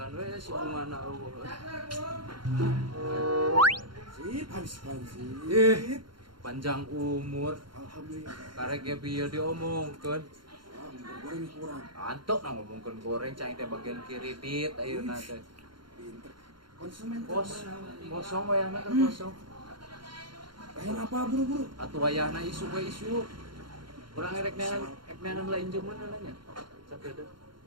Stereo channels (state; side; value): late; left; 0.72 ms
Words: we si kumana eueuh. Sip, habis Panjang umur. Alhamdulillah. Karek ge bieu diomongkeun. Goreng kurang. Antok na ngomongkeun goreng cai teh bagian kredit ayeuna teh. Pinter. Konsumen Kosong wayahna kan kosong. Bayar apa buru-buru? Atuh wayahna isu we isu. Urang erek neangan lain jeung mana nya. Sakedeuk.